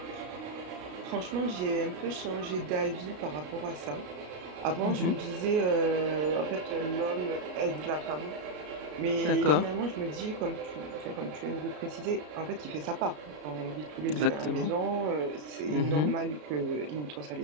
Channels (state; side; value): late; left; 33 ms